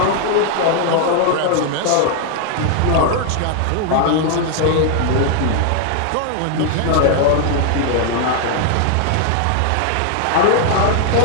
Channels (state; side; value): different; both; correlation 0.00